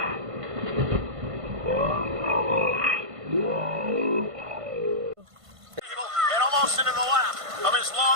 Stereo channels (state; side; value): late; left; 1.5 ms